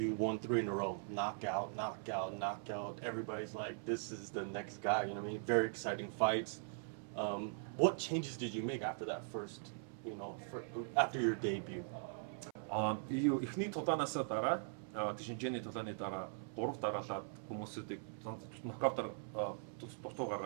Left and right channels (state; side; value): silent; left; 50 dB below the other